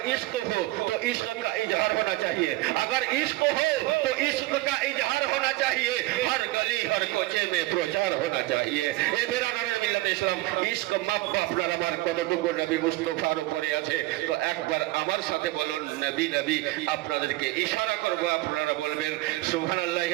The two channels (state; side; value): quieter; left; 19.6 dB